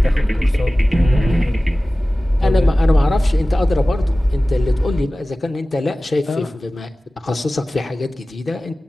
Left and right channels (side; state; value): both; normal; correlation 0.97